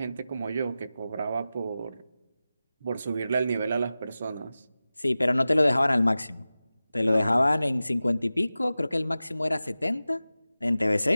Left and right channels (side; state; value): both; inverted; correlation -0.95